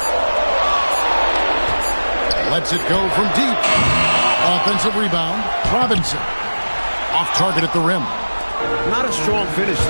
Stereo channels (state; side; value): inverted; both; correlation -1.00